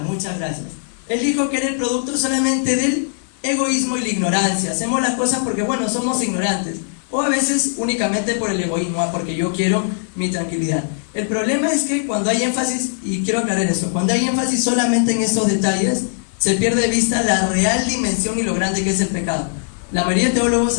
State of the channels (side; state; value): right; silent; 66 dB below the other